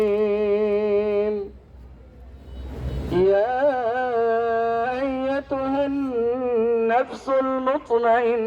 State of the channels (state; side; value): identical; both; correlation 1.00